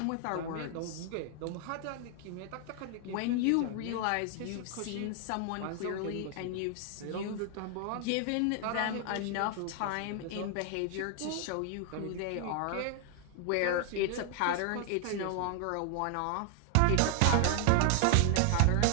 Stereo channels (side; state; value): both; different; correlation 0.00